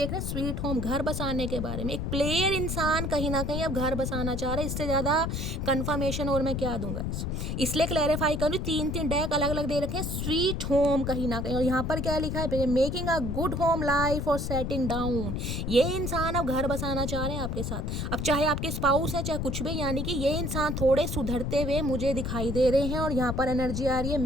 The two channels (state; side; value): noise; left; rumble, 2 dB below the sound